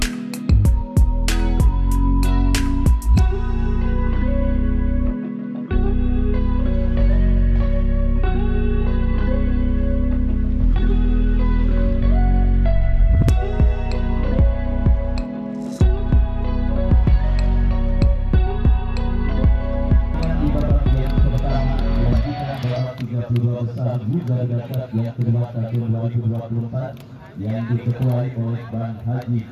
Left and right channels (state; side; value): identical; both; correlation 1.00